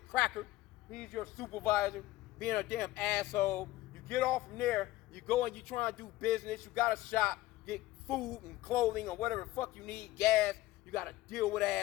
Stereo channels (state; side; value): quieter; right; 16.9 dB